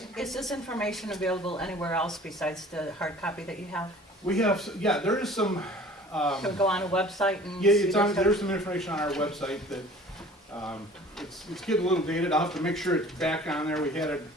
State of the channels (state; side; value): normal; both; correlation 0.47